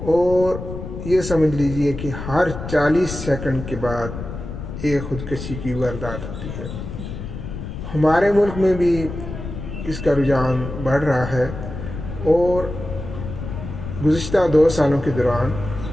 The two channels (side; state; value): left; noise; rumble, 8 dB below the sound